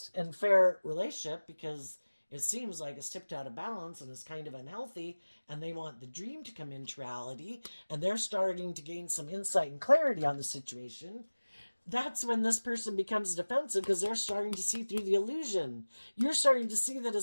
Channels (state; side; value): inverted; both; correlation -1.00